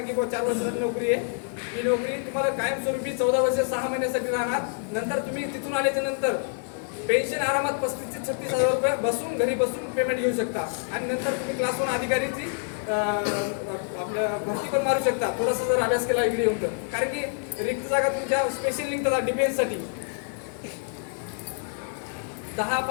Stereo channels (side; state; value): right; silent; 59 dB below the other